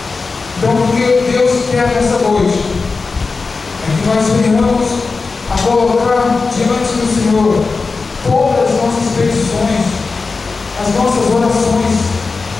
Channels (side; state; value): right; quieter; 4.2 dB